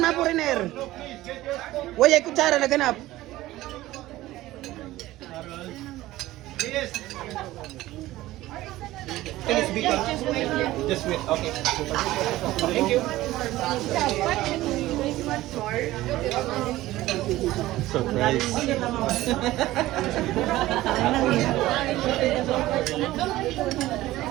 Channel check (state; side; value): quieter; left; 16.5 dB